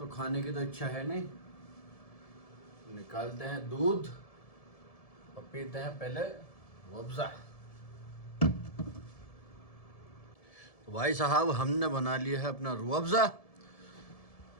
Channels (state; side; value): late; right; 1.7 ms